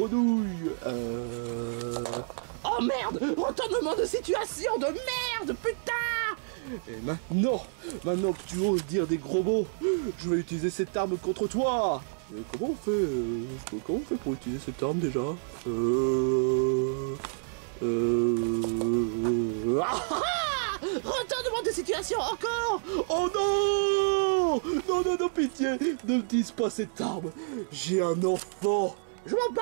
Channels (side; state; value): left; silent; 59 dB below the other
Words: Oh merde, retournement de situation de merde, putain. Et maintenant que tu oses dire des gros mots, je vais utiliser cette arme contre toi. Mais comment on fait pour utiliser cette arme déjà? Retournement de situation encore. Oh non! Non, non, non, pitié! Ne me dise pas cette arme! J'ai un enfant! Je m'en bats